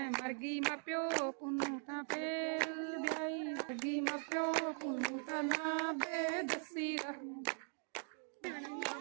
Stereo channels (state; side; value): silent; left; 50 dB below the other